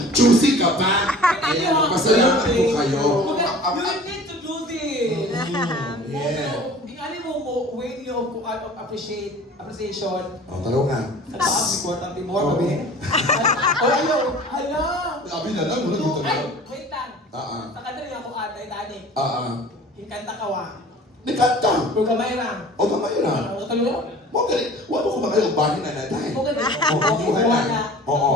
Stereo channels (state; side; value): normal; both; correlation 0.44